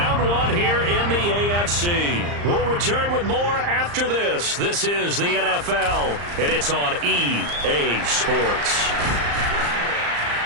one here in the AFC. We'll return with more after this. This is the NFL, and it's on EA Sports.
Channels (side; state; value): left; late; 34 ms